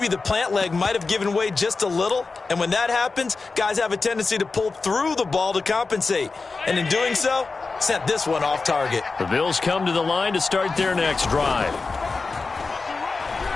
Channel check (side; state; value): right; quieter; 4.1 dB